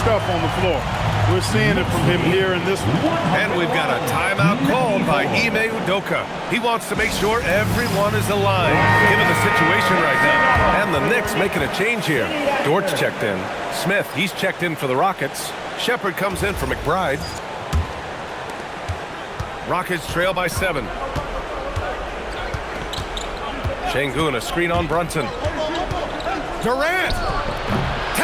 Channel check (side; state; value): both; identical; correlation 1.00